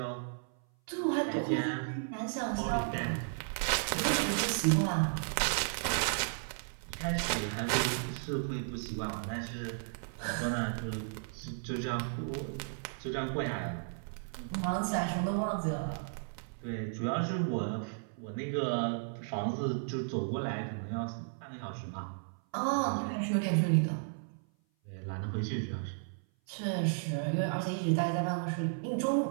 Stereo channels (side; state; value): left; silent; 55 dB below the other